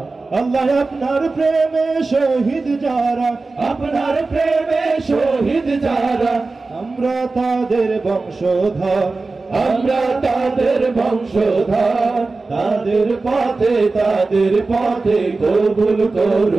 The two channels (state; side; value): quieter; left; 3.7 dB